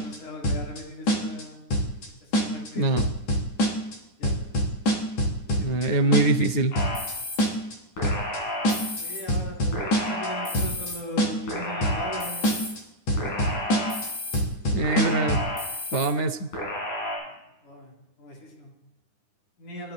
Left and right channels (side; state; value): right; late; 9.8 ms